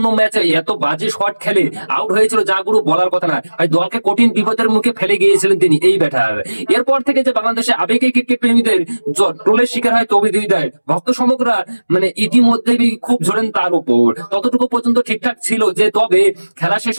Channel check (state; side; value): inverted; both; correlation -1.00